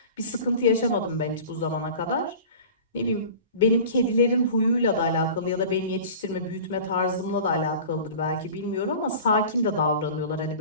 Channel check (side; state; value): both; inverted; correlation -0.39